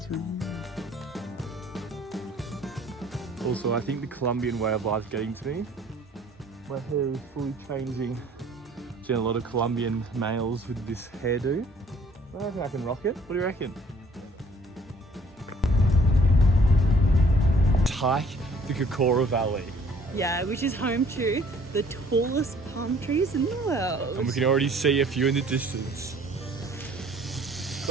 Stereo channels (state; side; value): normal; both; correlation 0.57